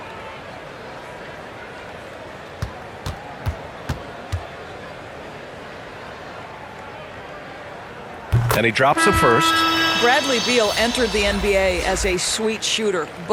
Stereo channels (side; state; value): both; identical; correlation 1.00